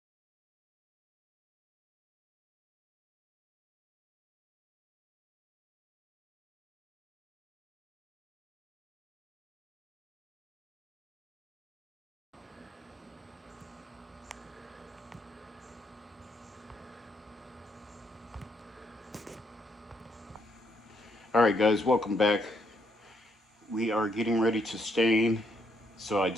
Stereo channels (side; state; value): both; normal; correlation 0.74